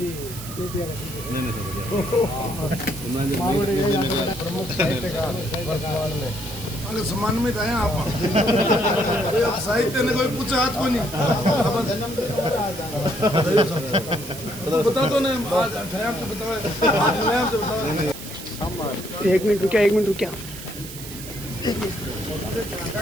प्रमुख साहित्यकार वर्तमान में अगर सम्मानित आए आप अब साहित्य ने कोई पूछा हाथ को नहीं बता दो ना आज ठहर तो बताओ एक मिनट रुकिया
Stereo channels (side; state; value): right; noise; hiss, 12 dB below the sound